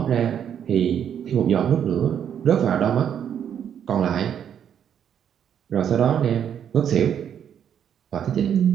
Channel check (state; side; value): quieter; left; 8.8 dB